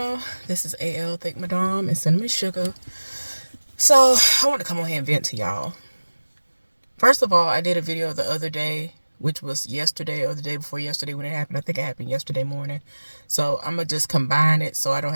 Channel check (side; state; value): both; inverted; correlation -1.00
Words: this is AL Thank Madame and Cinnamon Sugar. So I want to come on here and vent to y'all. First of all, I did a video the other day, which was yesterday or the day before yesterday when it happened. I think it happened yesterday morning. So I'm gonna just combine it so I don't